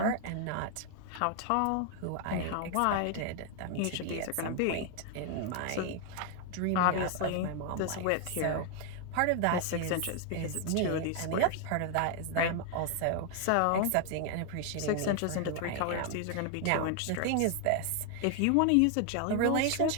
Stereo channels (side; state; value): both; different; correlation 0.00